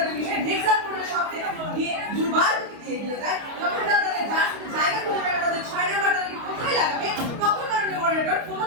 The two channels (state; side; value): late; left; 29 ms